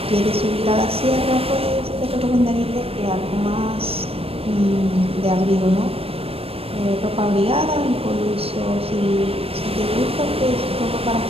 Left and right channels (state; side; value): late; left; 0.28 ms